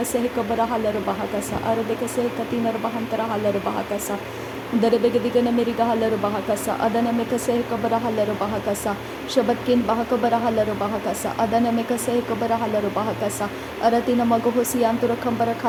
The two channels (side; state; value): both; identical; correlation 1.00